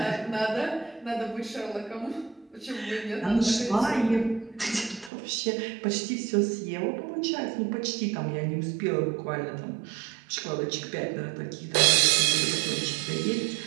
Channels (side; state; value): left; drops out; at 5.1 s